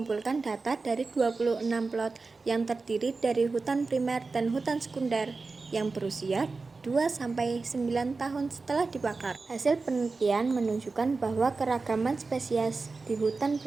data dari 26 plot yang terdiri dari hutan primer dan hutan sekunder yang berusia 2-9 tahun setelah dibakar. Hasil penelitian menunjukkan bahwa keragaman spesies di hutan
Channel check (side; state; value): left; quieter; 4.0 dB